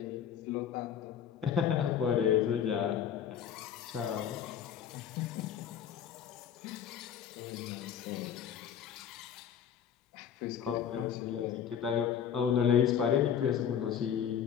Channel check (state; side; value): quieter; right; 8.7 dB